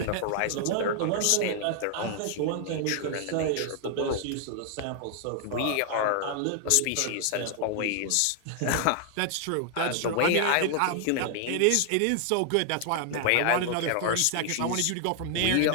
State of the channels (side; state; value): both; different; correlation 0.00